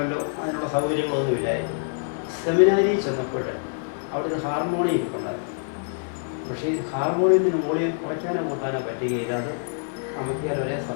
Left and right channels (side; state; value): right; silent; digital silence